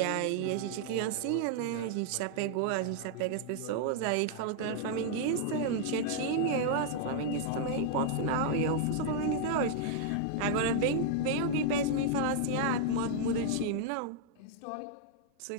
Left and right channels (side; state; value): both; different; correlation -0.01